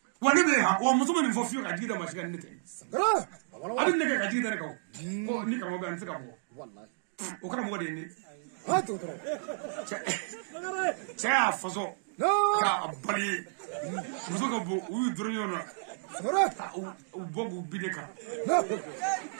wani be ha o muso ni fa fiyo ga dida ma shiga ne te bro abin ne ga dida ne ko ni ka mo ga ntika ko wallahi o kana mo ga de ni ha to cha faso ka abali muso ga bo u durnyona u bogu bideka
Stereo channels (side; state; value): left; silent; digital silence